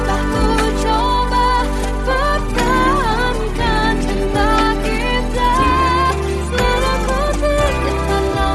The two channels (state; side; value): identical; both; correlation 1.00